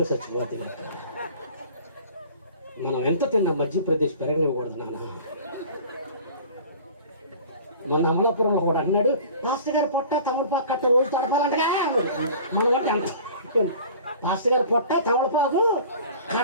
చచ్చిపోతే లెక్క. మనం ఎంత తిన్నా మధ్యప్రదేశ్ పెరగనివ్వకూడదు నాన్న. మొన్న అమలాపురంలో కూడా అన్నాడు, మాస్టర్ గారు పొట్ట తమలపాకు కట్ట రోజు తడపాలంటగా. మనకంటే అంత మాస్టర్ గారు పొట్ట తమలపాకు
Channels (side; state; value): both; inverted; correlation -0.44